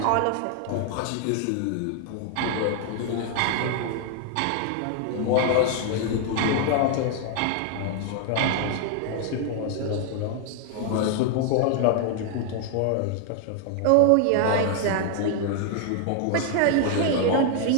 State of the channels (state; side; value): different; both; correlation 0.00